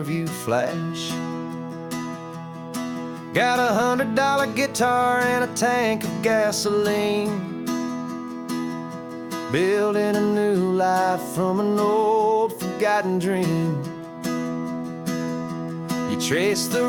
view flash. Got a $100 guitar and a tank of gasoline, building a new life from an old forgotten dream. You trace the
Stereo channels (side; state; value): both; identical; correlation 1.00